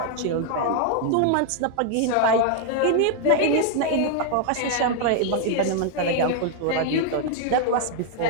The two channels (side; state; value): both; different; correlation 0.00